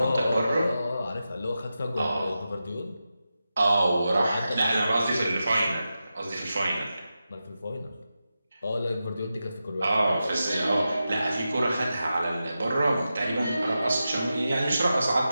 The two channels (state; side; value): inverted; both; correlation -0.91